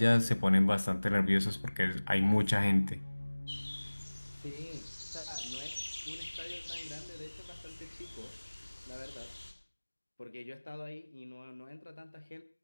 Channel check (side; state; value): both; inverted; correlation -1.00